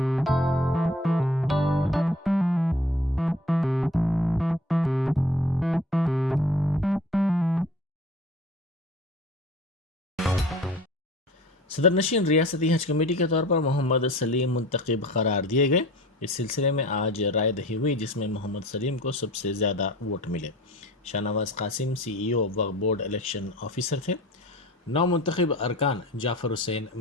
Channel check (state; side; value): normal; both; correlation 0.44